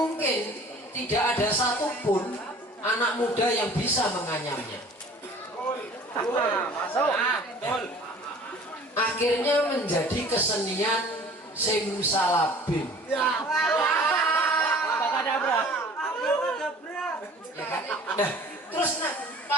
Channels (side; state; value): both; normal; correlation 0.48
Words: tidak ada satupun anak muda yang bisa menganyamnya. Akhirnya menjadi kesenian simsalabim. Ya kan? Nah, terus